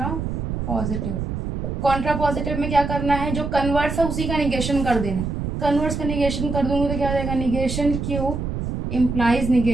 कॉन्ट्रापॉजिटिव में क्या करना है, जो कन्वर्स है उसी का निगेशन कर देना है। कन्वर्स का निगेशन कर दूंगी तो क्या हो जाएगा, negation Q implies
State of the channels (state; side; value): noise; right; rumble, 3 dB below the sound